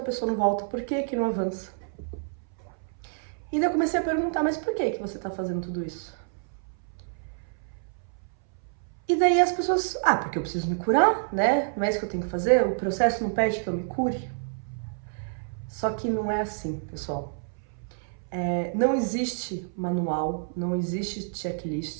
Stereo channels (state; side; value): silent; left; 59 dB below the other